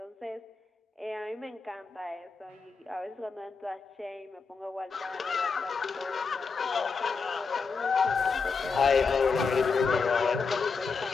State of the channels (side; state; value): right; quieter; 4.9 dB